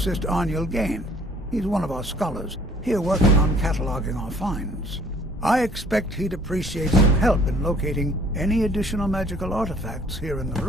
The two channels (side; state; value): both; normal; correlation 0.57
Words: Arniel Gain? He's one of our scholars, here working on cataloging our finds. I expect he'd appreciate some help in locating any additional magical artifacts here in the